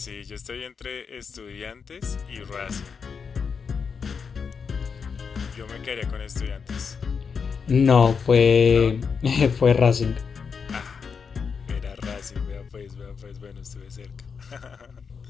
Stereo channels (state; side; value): quieter; right; 5.9 dB